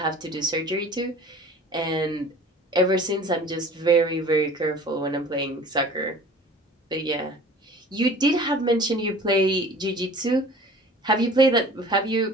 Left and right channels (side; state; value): both; normal; correlation 0.45